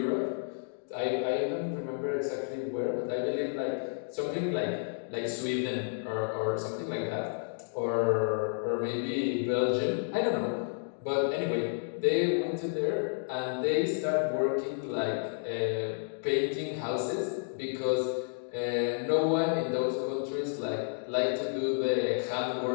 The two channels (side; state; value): right; silent; digital silence